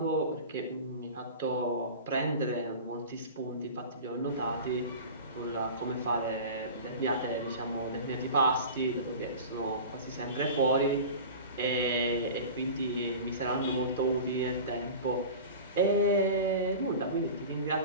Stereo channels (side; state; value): both; inverted; correlation -0.35